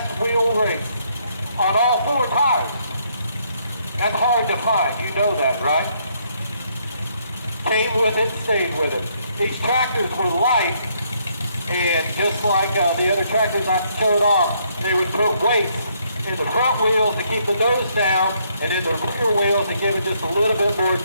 wheel race on all 4 tires. That's hard to find, you know that, right? Came with it, stayed with it. These tractors were light, and just like the other tractors I showed off, they would put weights in the front wheels to keep the nose down, and in the rear wheels to give it just a little bit more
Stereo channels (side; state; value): both; inverted; correlation -0.71